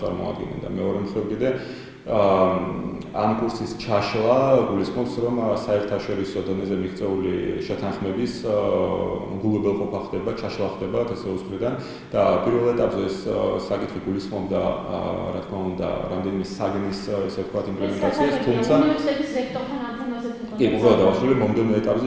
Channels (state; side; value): identical; both; correlation 1.00